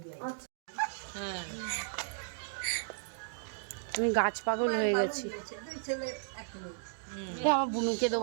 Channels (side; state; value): left; silent; digital silence